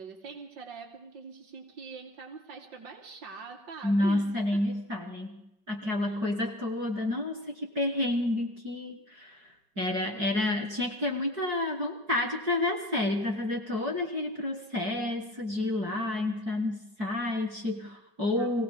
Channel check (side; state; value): left; late; 4.6 ms